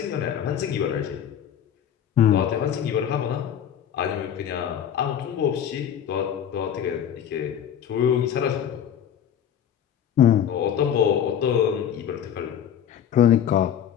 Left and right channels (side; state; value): right; quieter; 9.3 dB